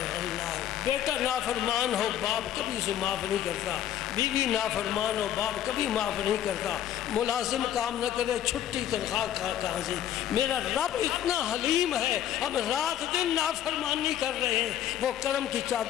اللہ۔ بیٹا نافرمان ہو باپ کبھی اسے معاف نہیں کرتا، بیوی نافرمان ہو باپ کبھی معاف نہیں کرتا، ملازم کام نہ کرے چھٹی تنخواہ کہاں سے؟ میرا رب اتنا حلیم ہے، ہم رات دن نافرمانی کر رہے ہیں، وہ کرم کی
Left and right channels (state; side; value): quieter; right; 11.2 dB